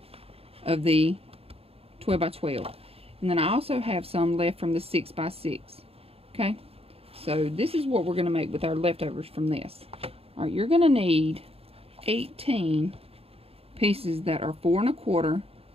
of the 12 by 12, and then I also have some left from the 6 by 6, okay. So this is what we're going to make with our leftovers from this. All right, you're going to need 18 pieces that are 4 1/4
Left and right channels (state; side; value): late; left; 0.28 ms